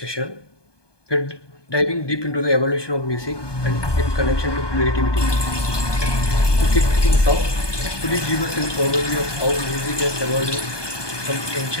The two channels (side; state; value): right; late; 1.2 ms